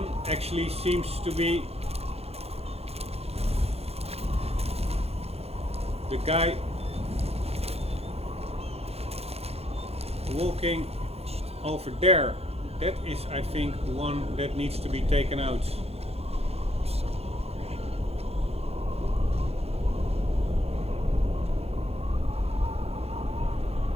actually seems to be the guy walking over there. That is, I think, one that needs to be taken out.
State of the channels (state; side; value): late; left; 0.29 ms